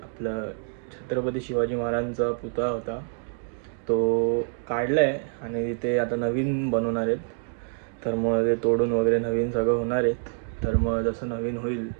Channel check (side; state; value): left; silent; 60 dB below the other